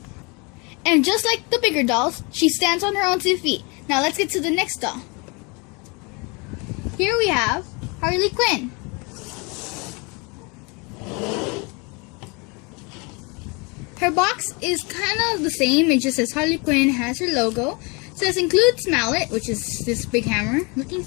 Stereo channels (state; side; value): quieter; right; 29.7 dB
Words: And just like the bigger dolls, she stands on her own 2 feet. Now let's get to the next doll. Here we have Harley Quinn. Her box is kind of the same. It just says Harley Quinn, has her logo. It says includes mallet, which is this big hammer looking